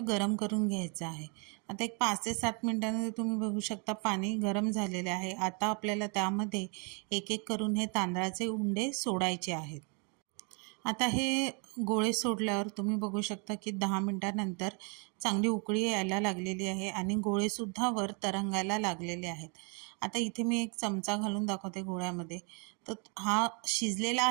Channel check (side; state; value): left; quieter; 35.8 dB